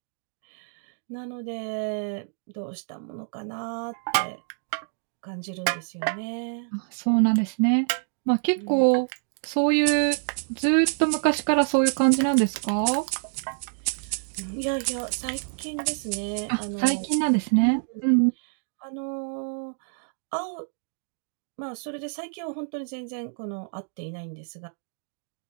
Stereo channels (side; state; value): left; silent; digital silence